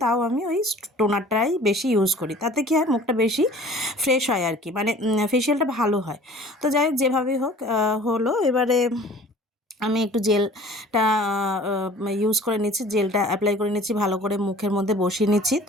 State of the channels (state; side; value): normal; both; correlation 0.47